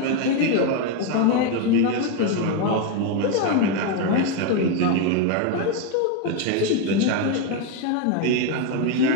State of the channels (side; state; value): both; different; correlation 0.02